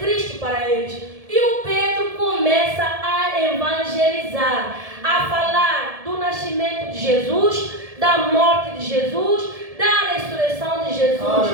para eles. E o Pedro começa a evangelizar, a falar do nascimento de Jesus, da morte de Jesus, da ressurreição de Jesus.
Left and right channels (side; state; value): left; late; 1.7 ms